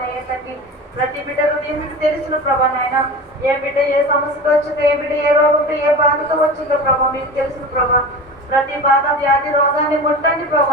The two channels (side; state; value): both; normal; correlation 0.32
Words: తండ్రి. ప్రతి బిడ్డ హృదయం మీకు తెలుసును ప్రభా నాయన. ఏ బిడ్డ ఏ సమస్యతో వచ్చిందో ఏ బిడ్డ ఏ రోగంతో ఏ బాధతో వచ్చిందో ప్రభా మీకు తెలుసును ప్రభా. ప్రతి బాధ వ్యాధి రోగాన్ని ముట్టండి